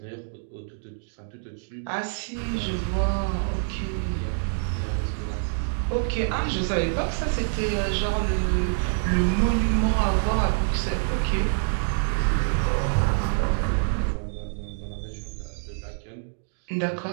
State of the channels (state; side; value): silent; left; digital silence